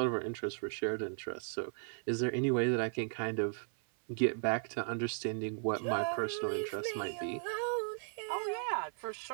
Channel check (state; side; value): silent; left; 54 dB below the other